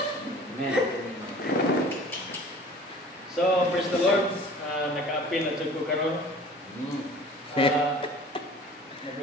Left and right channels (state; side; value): normal; both; correlation 0.46